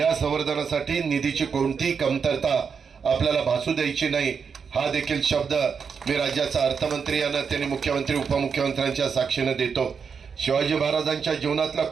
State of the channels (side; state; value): left; quieter; 6.2 dB